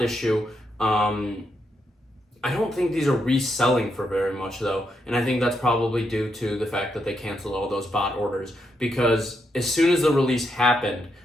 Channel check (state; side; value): normal; both; correlation 0.81